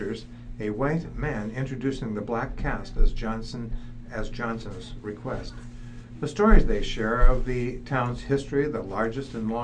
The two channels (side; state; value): both; identical; correlation 1.00